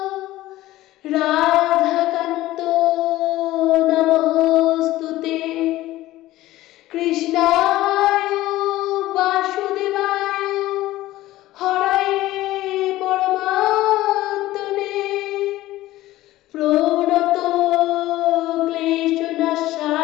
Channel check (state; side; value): quieter; right; 16.3 dB